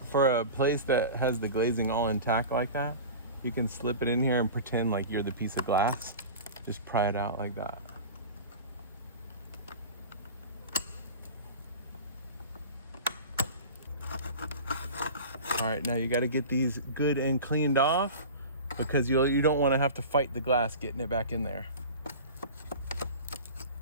for a place that has the glazing all intact like that, you can slip it in here and pretend like you're the piece of glass. Just pry it out like that. All right, now you got to get these good and cleaned off because you don't want to have to fight the glass getting it back in there.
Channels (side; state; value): both; inverted; correlation -0.34